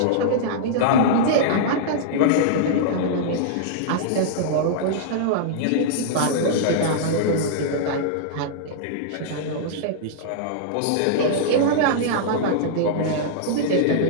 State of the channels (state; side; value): different; both; correlation -0.02